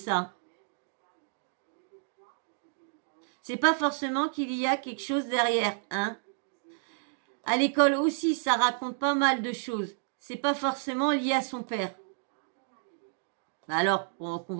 C'est pas forcément qu'il y a quelque chose derrière, hein. À l'école aussi, ça raconte pas mal de choses. C'est pas forcément lié à son père. Bah alors, on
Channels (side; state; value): left; silent; 55 dB below the other